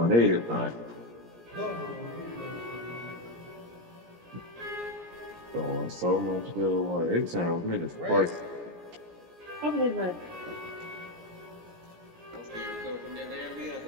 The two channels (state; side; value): late; left; 17 ms